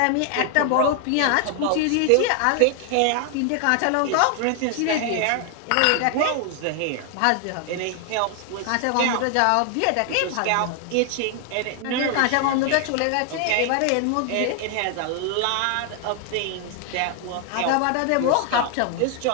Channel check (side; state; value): both; different; correlation 0.00